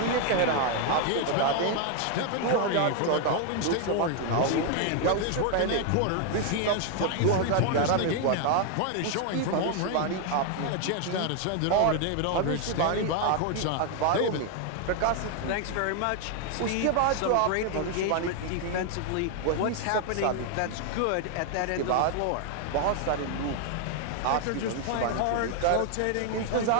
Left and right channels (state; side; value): different; both; correlation 0.01